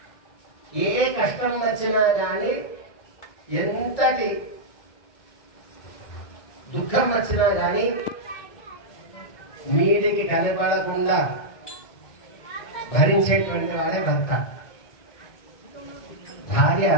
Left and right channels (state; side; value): late; right; 2.2 ms